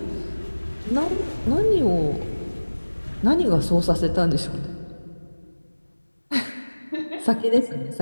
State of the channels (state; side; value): inverted; both; correlation -1.00